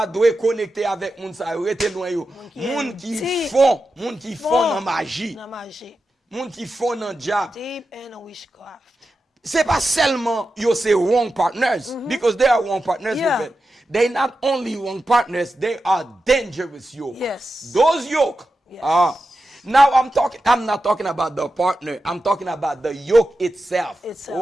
doit connecter avec moun sa rete loin yo. Moun ki font nan magie. Moun ki font nan diable. Deep in witchcraft. C'est pas seulement you say wrong partners, because they are wrong partners with it. They not only wrong partners, they are dangerous yoke. Yes. Those yoke. Yes. Now I'm not talking about the partner. I'm talking about the yoke itself.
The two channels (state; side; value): normal; both; correlation 0.91